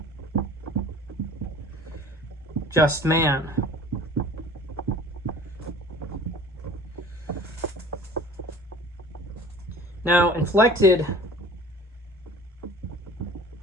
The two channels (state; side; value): normal; both; correlation 0.45